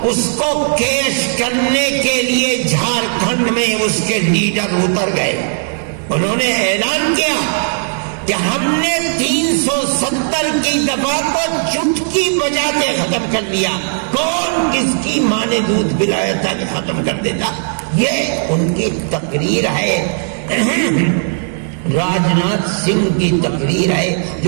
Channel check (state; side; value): silent; left; digital silence